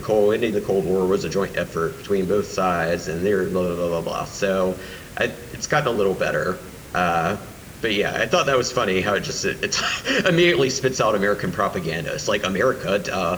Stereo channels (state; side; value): identical; both; correlation 1.00